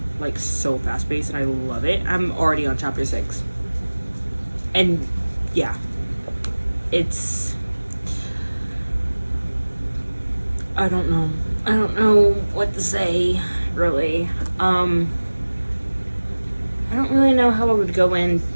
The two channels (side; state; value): both; inverted; correlation -1.00